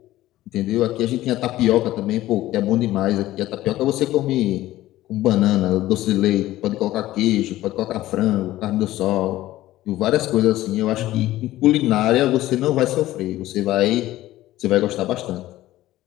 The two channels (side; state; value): right; quieter; 15.5 dB